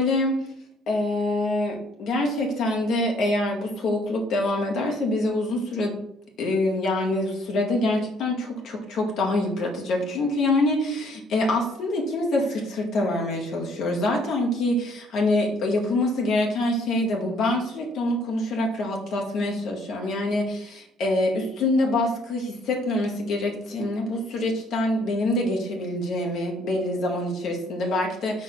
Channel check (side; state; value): both; normal; correlation 0.63